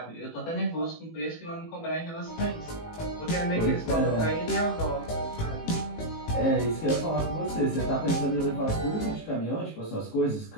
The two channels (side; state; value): right; late; 18 ms